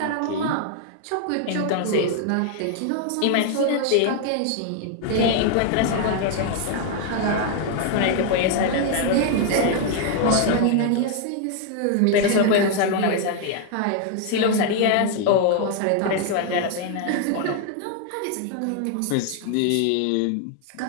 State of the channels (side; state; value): both; different; correlation 0.00